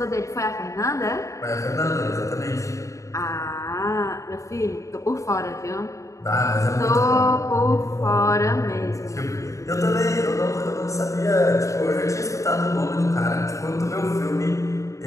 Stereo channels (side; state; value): right; late; 0.15 ms